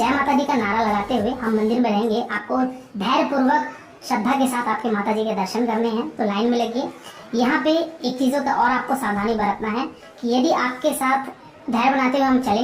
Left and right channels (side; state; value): both; identical; correlation 1.00